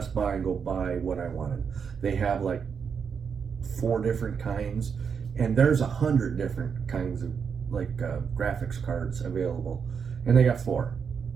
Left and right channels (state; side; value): quieter; left; 6.5 dB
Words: Buy and go buy what I wanted. They have like 4 different kinds, and there's 100 different kinds of like graphics cards available, and they got 4.